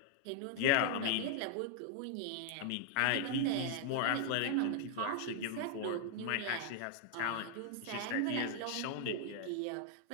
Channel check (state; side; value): different; both; correlation -0.01